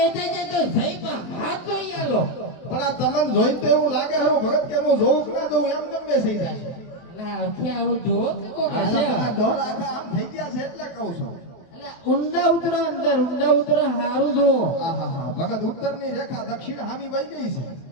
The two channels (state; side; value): late; right; 23 ms